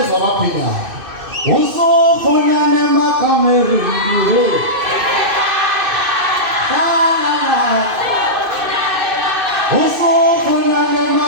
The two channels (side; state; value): left; late; 2.6 ms